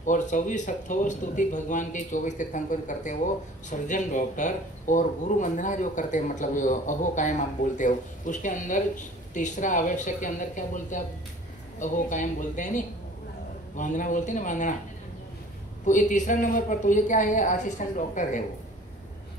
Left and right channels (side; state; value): both; normal; correlation 0.48